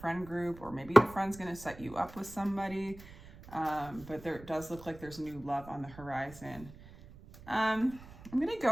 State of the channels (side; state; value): right; noise; rumble, 18 dB below the sound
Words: group, or maybe your friend's gonna set you up with somebody, but there does look like there's new love on the horizon. I'm gonna